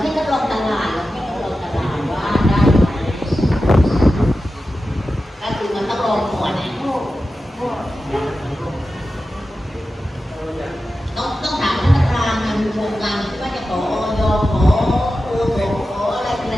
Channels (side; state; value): both; normal; correlation 0.93